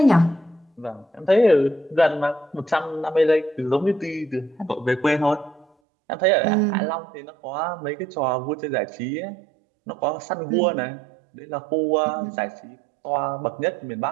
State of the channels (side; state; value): left; drops out; at 5.7 s